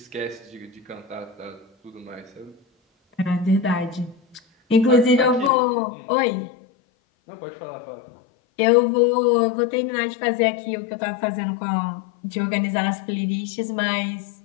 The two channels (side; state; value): right; drops out; at 5.5 s